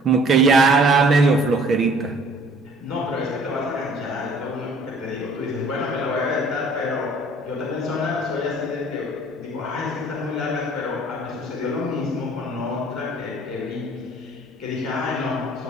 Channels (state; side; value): normal; both; correlation 0.54